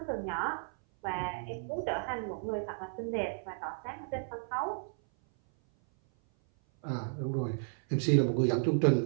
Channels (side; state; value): left; silent; 56 dB below the other